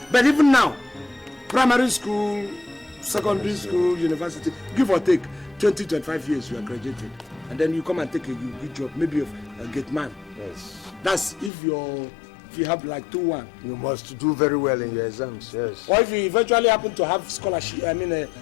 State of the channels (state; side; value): drops out; right; at 11.5 s